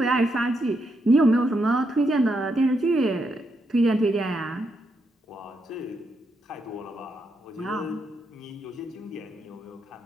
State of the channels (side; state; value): both; normal; correlation 0.81